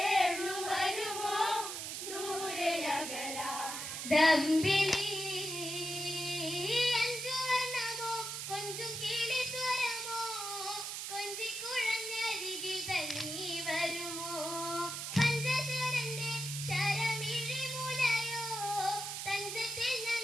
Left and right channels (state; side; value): noise; right; hiss, 5 dB below the sound